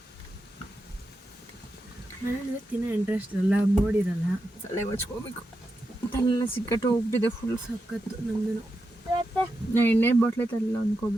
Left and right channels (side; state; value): both; normal; correlation 0.88